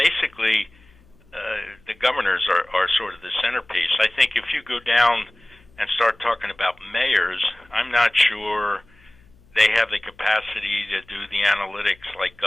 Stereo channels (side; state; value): left; noise; hum, 29 dB below the sound